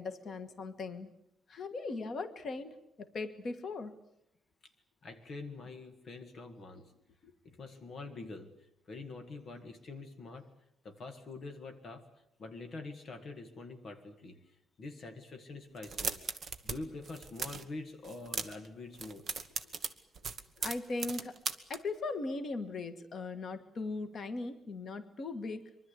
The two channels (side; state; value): both; normal; correlation 0.76